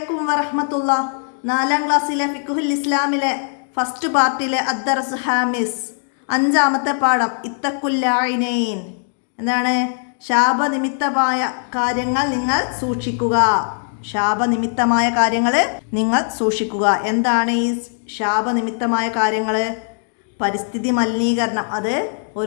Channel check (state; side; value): silent; right; digital silence